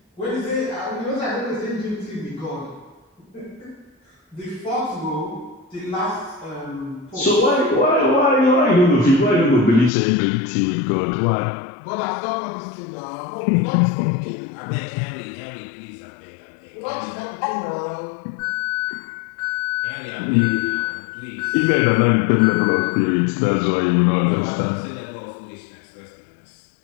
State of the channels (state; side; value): drops out; right; at 9.9 s